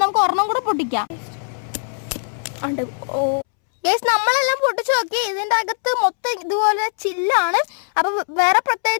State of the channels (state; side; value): silent; right; 66 dB below the other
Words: നമുക്ക് ഒരെണ്ണം കൂടെ പൊട്ടിക്കാം. നമ്മളെല്ലാം പൊട്ടിച്ചു നോക്കി, ഇതിൻ്റെ അകത്ത് മൊത്തം ഇതുപോലെ ചില്ലാണ്. അപ്പം വേറെ